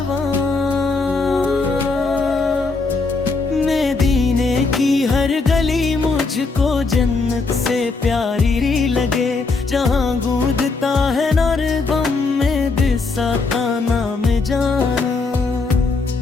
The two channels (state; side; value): quieter; right; 4.0 dB